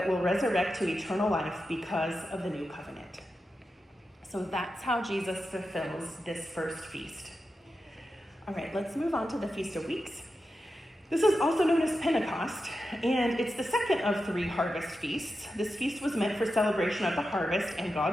will resurrect to eternal life because of the new covenant. So that's how Jesus fulfills this first feast. All right, let's move on to the Feast of Weeks. This is also known as Pentecost, and it's the second of 3 harvest feasts. This feast was meant for celebration of the harvest and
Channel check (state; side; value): normal; both; correlation 0.90